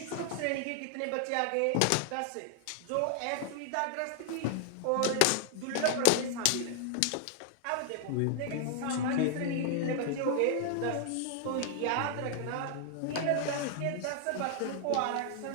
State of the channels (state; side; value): different; both; correlation -0.01